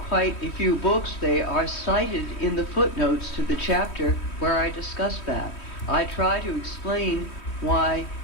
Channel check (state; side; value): late; right; 3.1 ms